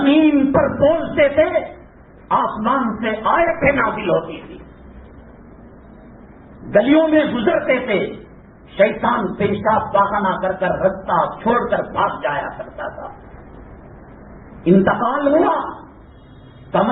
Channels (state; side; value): identical; both; correlation 1.00